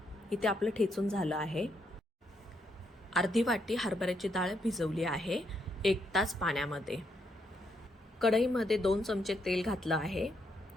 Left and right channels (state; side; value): normal; both; correlation 0.77